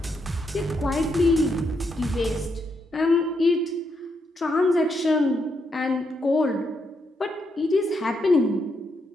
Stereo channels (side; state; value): both; normal; correlation 0.79